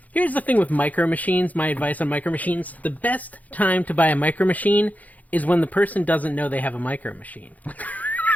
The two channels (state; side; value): late; right; 0.077 ms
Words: here's the thing with Micro Machines, my advice on Micro Machines. The best time to buy a Micro Machine is when the person doesn't know they have a Micro Machine.